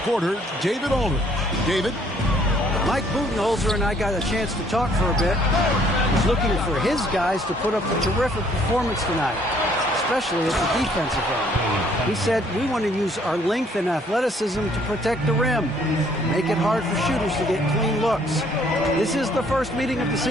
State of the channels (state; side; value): normal; both; correlation 0.63